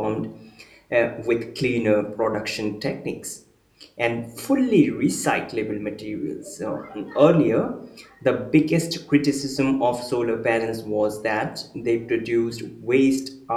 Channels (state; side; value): identical; both; correlation 1.00